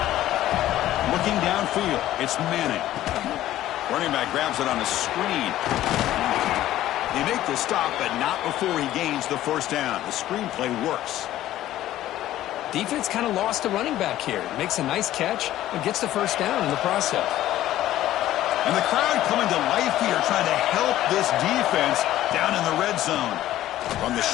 Looking downfield, it's Manning. Running back grabs it on a screen. They make the stop, but not before he gains the first down. The screen play works. Defense kind of lost the running back here. Makes a nice catch and gets the first down in the process. And the crowd coming to life here, trying to help this defense down in the red zone. From the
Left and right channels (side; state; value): right; quieter; 13.8 dB